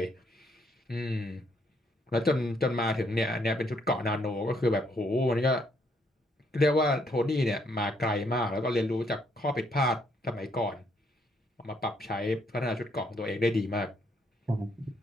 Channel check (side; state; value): both; normal; correlation 0.71